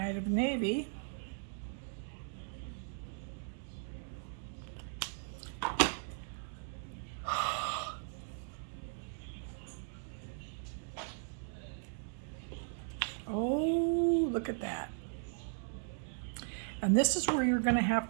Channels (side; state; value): left; silent; digital silence